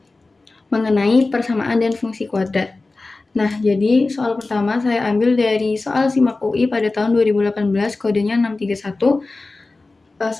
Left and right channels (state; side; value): quieter; right; 3.4 dB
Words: mengenai persamaan dan fungsi kuadrat. Nah, jadi soal pertama saya ambil dari soal SIMAK UI pada tahun 2018, kodenya 631.